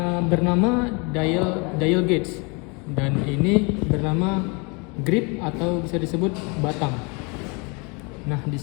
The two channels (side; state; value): right; quieter; 30.9 dB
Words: bernama dial gauge, dan ini bernama grip atau bisa disebut batang. Nah, di